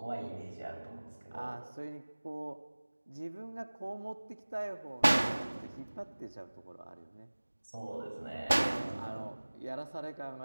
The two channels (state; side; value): inverted; both; correlation -1.00